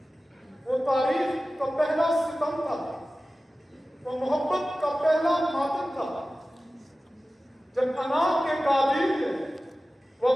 وہ تاریخ کا پہلا ستم تھا، وہ محبت کا پہلا ماتم تھا، جب انا کے قابیل نے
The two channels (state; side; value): normal; both; correlation 0.96